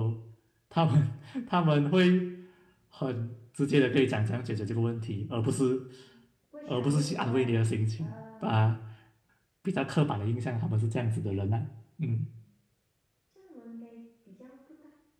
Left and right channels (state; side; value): identical; both; correlation 1.00